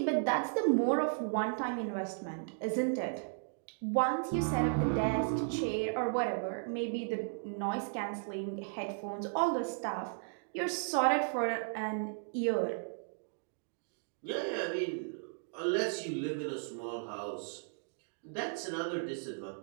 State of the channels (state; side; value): silent; left; digital silence